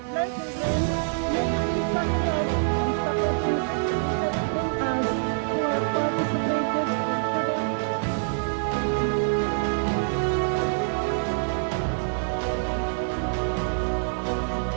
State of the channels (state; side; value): silent; left; 61 dB below the other